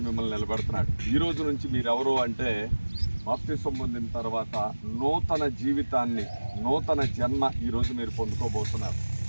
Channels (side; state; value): both; inverted; correlation -1.00